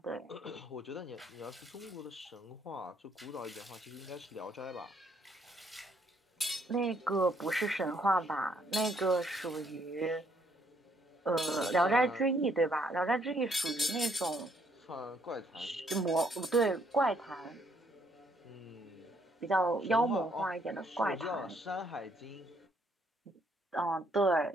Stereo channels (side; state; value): both; normal; correlation 0.69